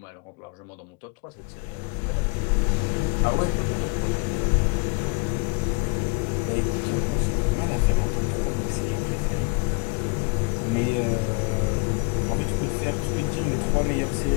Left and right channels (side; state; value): right; quieter; 33.0 dB